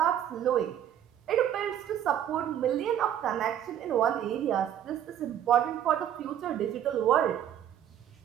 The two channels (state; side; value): quieter; left; 10.4 dB